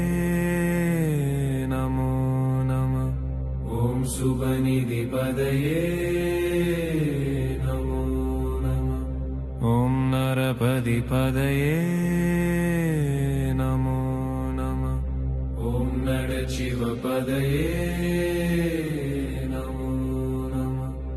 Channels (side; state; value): both; identical; correlation 1.00